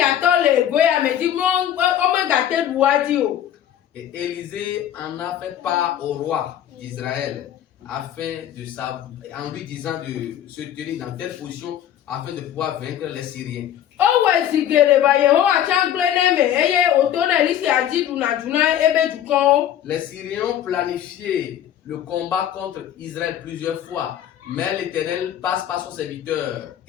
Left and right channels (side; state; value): right; quieter; 10.8 dB